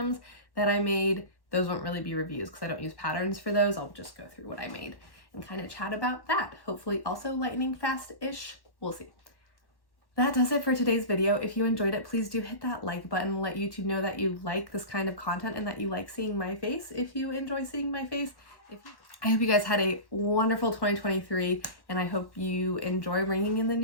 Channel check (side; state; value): right; late; 1.0 ms